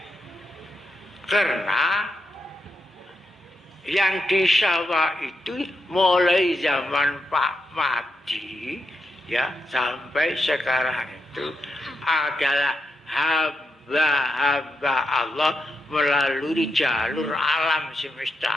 Karena Yang di sawah itu mulai zaman Pak Madi ya sampai sekarang itu adalah hamba-hamba Allah melalui jalur alam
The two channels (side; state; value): both; normal; correlation 0.84